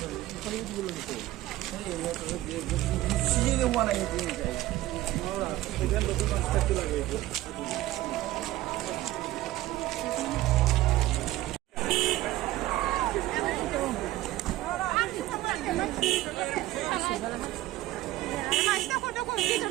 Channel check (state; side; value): quieter; left; 16.1 dB